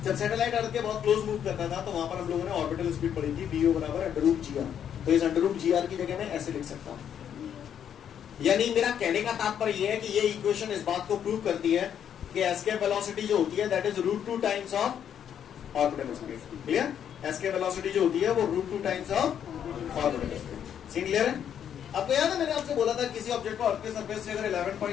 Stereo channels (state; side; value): quieter; right; 9.0 dB